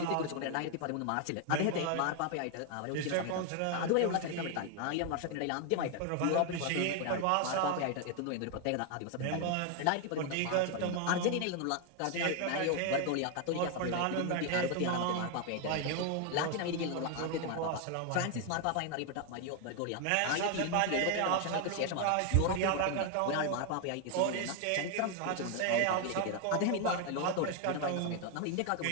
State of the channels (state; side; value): different; both; correlation 0.01